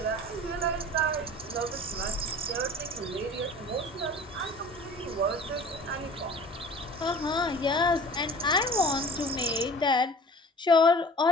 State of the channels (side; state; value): both; normal; correlation 0.44